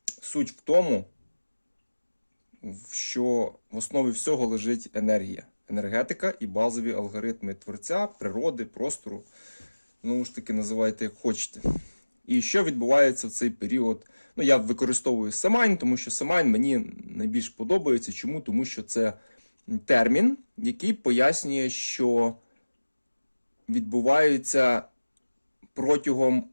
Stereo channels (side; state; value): both; inverted; correlation -1.00